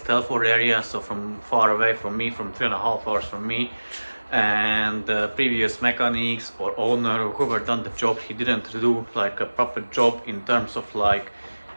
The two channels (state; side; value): inverted; both; correlation -1.00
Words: area, so from far away from me, from 3.5 hours from me, and the previous mechanics or owner, whoever done the job, he didn't do like a proper job in terms of like